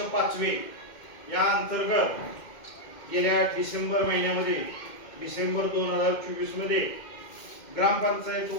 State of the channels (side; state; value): right; late; 2.1 ms